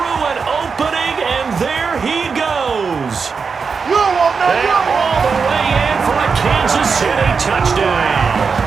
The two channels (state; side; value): quieter; left; 5.3 dB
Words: an opening, and there he goes. You won't know. And all the way in for a Kansas City touchdown.